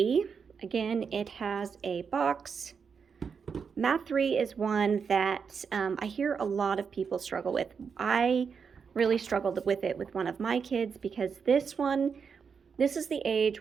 again, it has a box. Math 3 is one that I hear a lot of people struggle with. I really struggled with it with one of my kids, because this is the age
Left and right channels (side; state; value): left; quieter; 6.1 dB